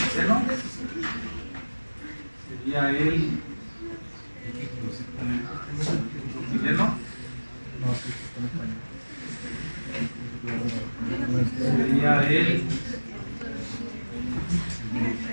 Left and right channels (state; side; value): inverted; both; correlation -1.00